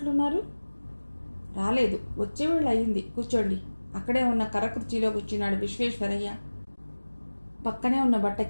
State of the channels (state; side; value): inverted; both; correlation -1.00